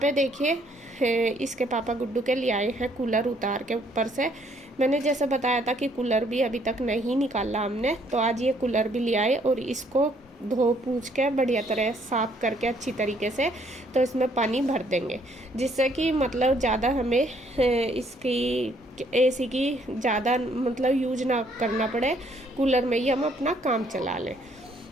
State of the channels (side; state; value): both; normal; correlation 0.66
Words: देखिए इसके पापा गुड्डू के लिए आए हैं कूलर उतार के ऊपर से। मैंने जैसे बताया था कि कूलर भी अभी तक नहीं निकाला हमने, तो आज ये कूलर भी ले आए और इसको धो पूछ के बढ़िया तरह साफ करके अच्छी तरीके से तो इसमें पानी भर देंगे, जिससे कि मतलब ज़्यादा हमें इसकी एसी की ज़्यादा मतलब यूज ना करना पड़े, कूलर में ही हम अपना काम चला लें।